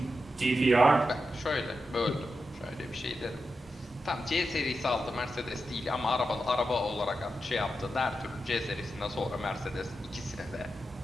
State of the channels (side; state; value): both; normal; correlation 0.89